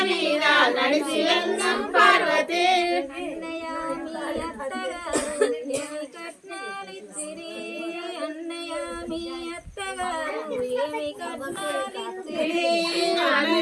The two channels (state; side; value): identical; both; correlation 1.00